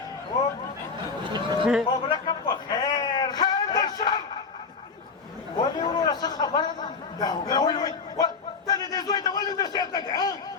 مبرکه په خیر د شر ولې وروره څه خبره ده ته د دې زوی ته ولې نصیحت نه کوې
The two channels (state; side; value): quieter; right; 4.9 dB